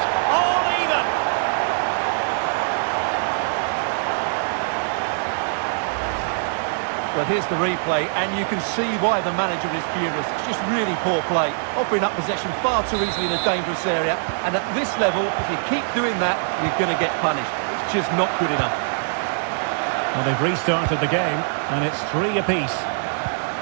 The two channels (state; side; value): silent; left; digital silence